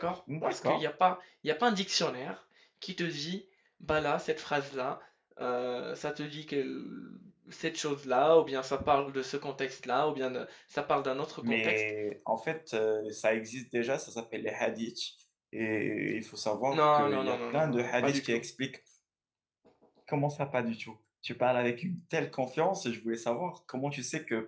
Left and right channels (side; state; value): both; identical; correlation 1.00